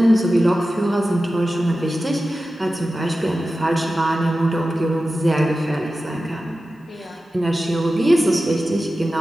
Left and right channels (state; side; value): normal; both; correlation 0.94